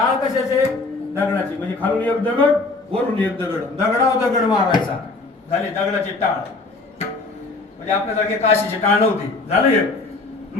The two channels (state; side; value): quieter; right; 3.5 dB